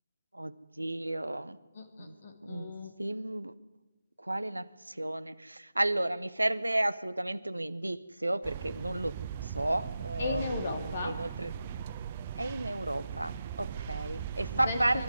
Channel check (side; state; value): both; inverted; correlation -0.91